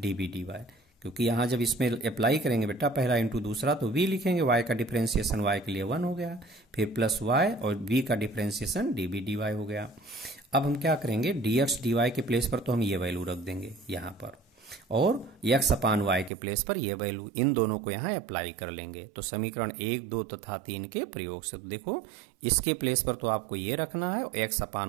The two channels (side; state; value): left; drops out; at 16.3 s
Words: dy, क्योंकि यहाँ जब इसमें अप्लाई करेंगे बेटा पहला इंटू दूसरा तो v लिखेंगे, y का डिफ्रेंसिएशन y के लिए 1 हो गया, फिर प्लस y और v का डिफ्रेंसिएशन db dy हो गया। अब हम क्या करेंगे, dx dy के प्लेस पर तो हम ये वैल्यू रख देंगे यहाँ पर, और x अपान y के प्लेस पर ये वैल्यू, इन दोनों को यहाँ अप्लाई कर लेंगे। तो समीकरण 1, 2 तथा 3 के प्रयोग से, तो देखो इसके प्लेस पर तो आपको ये रखना है और x